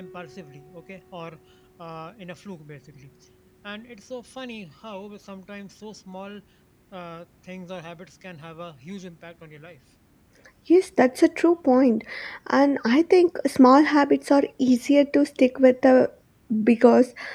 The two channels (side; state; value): both; identical; correlation 1.00